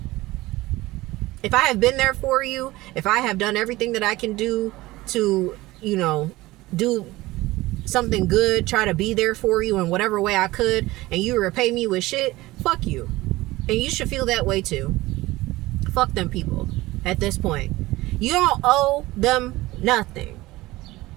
If I have been there for you, if I have done everything that I can do to, you know, do something good, try to be there for you in whatever way I could, and you repay me with shit, fuck you. And you should feel that way too. Fuck them people. At this point, you don't owe them nothing.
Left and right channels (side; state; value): left; quieter; 19.0 dB